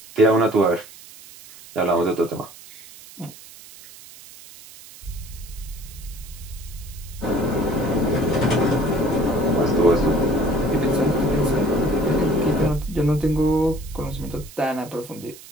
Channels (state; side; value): noise; right; hiss, 19 dB below the sound